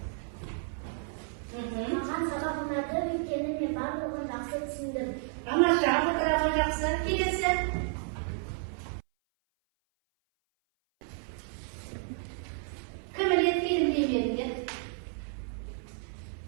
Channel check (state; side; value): silent; left; 56 dB below the other